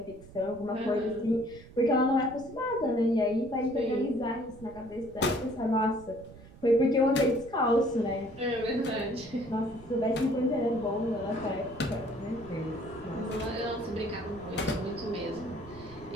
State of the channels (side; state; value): right; noise; rumble, 19 dB below the sound